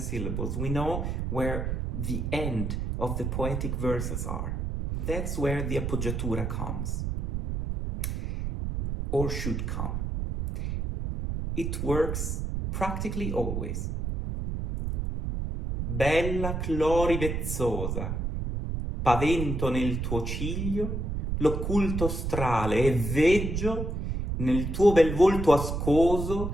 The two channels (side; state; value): right; noise; rumble, 2 dB below the sound